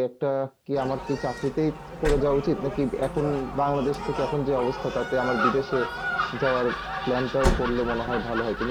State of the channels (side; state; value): both; identical; correlation 1.00